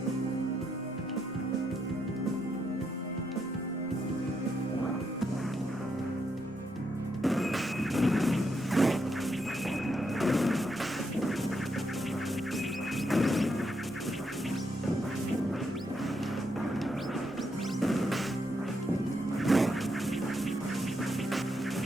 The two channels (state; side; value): normal; both; correlation 0.80